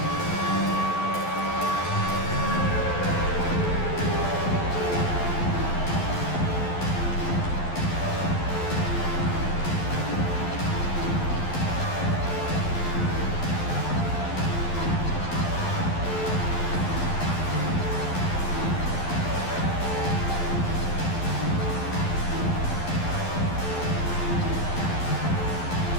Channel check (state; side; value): late; right; 11 ms